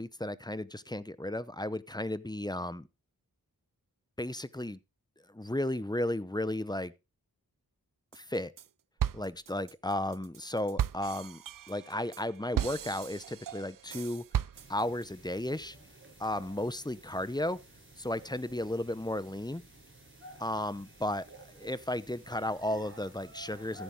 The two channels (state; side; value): normal; both; correlation 0.65